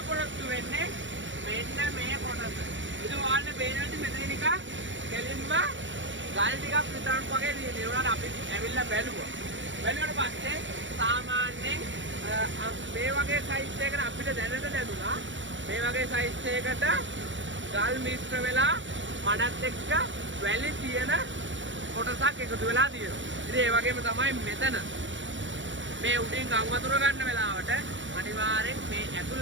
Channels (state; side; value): late; left; 0.55 ms